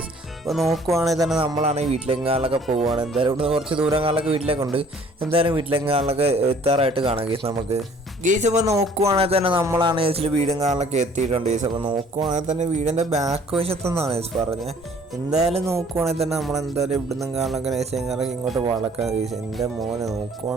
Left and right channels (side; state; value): both; normal; correlation 0.56